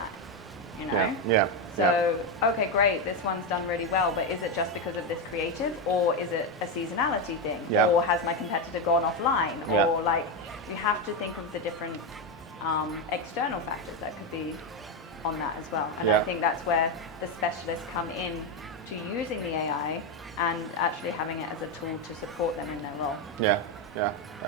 you know? So, okay, great, this one's done really well, but is it just because of this creative, or is it a seasonality thing? Or has my competitor gone offline? Or like, you have to think of the different external factors that could be on that as well. And I think that's where the specialists come in to using the AI and actually having it as a tool to support them in their role.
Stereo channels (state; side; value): normal; both; correlation 0.09